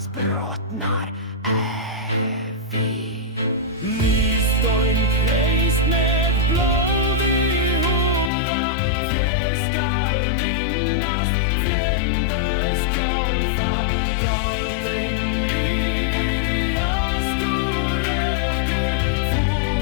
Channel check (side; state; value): right; drops out; at 8.3 s